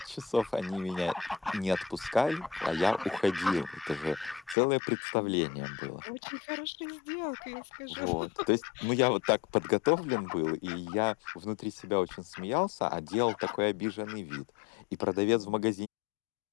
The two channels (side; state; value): right; drops out; at 4.5 s